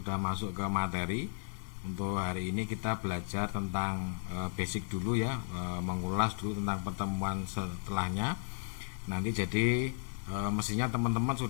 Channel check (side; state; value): right; silent; 55 dB below the other